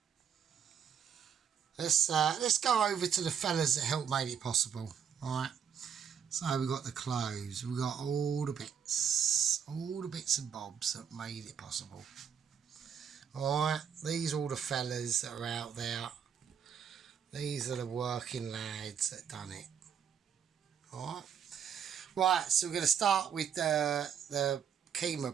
let's go over to the fellas that helped make it possible. Alright, so we got the clothes, we got all the bits and bobs that made it possible. Alright, these are all the fellas that are out there. These are the working lads that done it. Alright, right, so we're going to start with the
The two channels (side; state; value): left; quieter; 7.8 dB